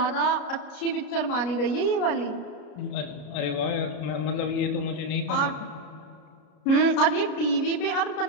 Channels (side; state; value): right; late; 33 ms